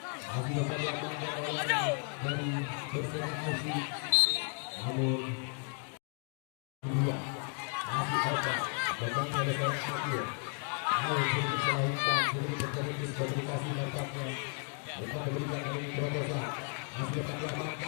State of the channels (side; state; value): right; quieter; 36.3 dB